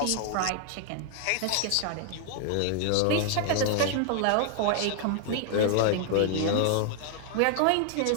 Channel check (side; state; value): both; different; correlation 0.00